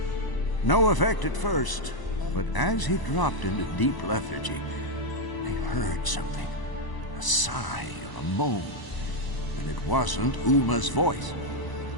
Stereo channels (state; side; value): late; right; 1.0 ms